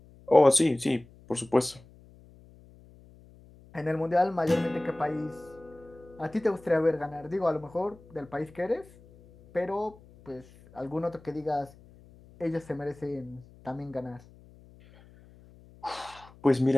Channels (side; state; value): left; noise; hum, 24 dB below the sound